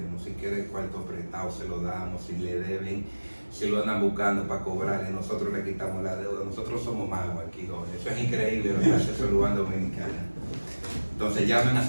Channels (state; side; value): inverted; both; correlation -1.00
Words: Si quieren cuarto prestado, se lo damos. Si le deben, si lo andan buscando para cobrarle, nosotros le quitamos la deuda. Nosotros somos magos aquí, Jorge. Eso es increíble lo que hace Salud Bank Dominicana. Entonces llamen a